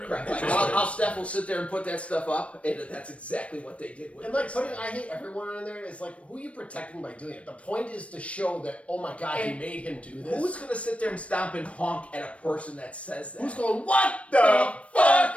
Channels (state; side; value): late; right; 0.063 ms